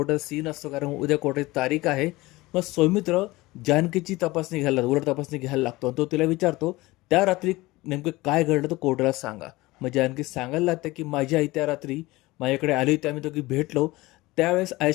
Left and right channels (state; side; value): quieter; right; 20.2 dB